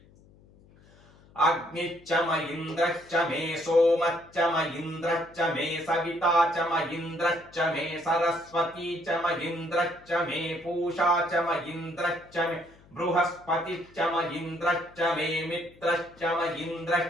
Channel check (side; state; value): left; noise; hum, 26 dB below the sound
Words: अग्निश्च म इन्द्रश्च मे सोमश्च म इन्द्रश्च मे सविता च म इन्द्रश्च मे सरस्वती च म इन्द्रश्च मे पूषा च म इन्द्रश्च मे बृहस्पतिश्च म इन्द्रश्च मे मित्रश्च म